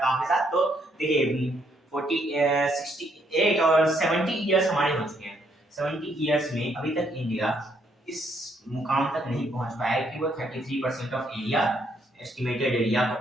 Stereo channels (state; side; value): normal; both; correlation 0.71